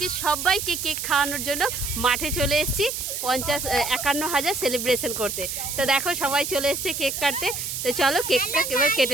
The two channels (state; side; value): noise; right; hiss, 4 dB below the sound